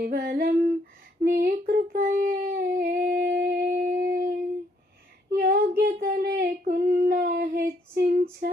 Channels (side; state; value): both; normal; correlation 0.70